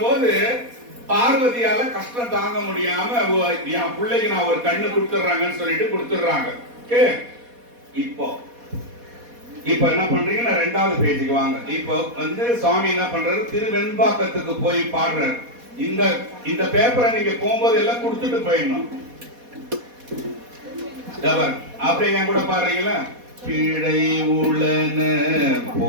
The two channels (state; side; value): late; left; 4.2 ms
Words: பார்வதியால கஷ்டம் தாங்க முடியாம என் பிள்ளைக்கு நான் ஒரு கண்ணு கொடுத்துறாங்கன்னு சொல்லிட்டு கொடுத்துடுறாங்க. இப்போ என்ன பண்றீங்க? நான் 2வது பேஜுக்கு வாங்க. இப்போ வந்து சுவாமி என்ன பண்றாரு, திருவெண்பாக்கத்துக்கு போய் பாடுறாரு. இந்த இந்த பேப்பரை நீங்க போகும்போது எல்லாம் கொடுத்துட்டு போயிடணும். அப்படியே என் கூட பாருங்களா, பிழை உளன